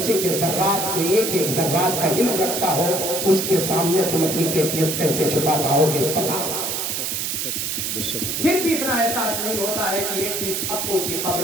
کے ذرات کو ایک ایک ذرات کا علم رکھتا ہو، اس کے سامنے تم اپنی کیفیت کیسے چھپا پاؤ گے؟ پتا پھر بھی اتنا احساس نہیں ہوتا ہے کہ ایک دن سب کو اسی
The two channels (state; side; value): noise; right; hiss, 2 dB below the sound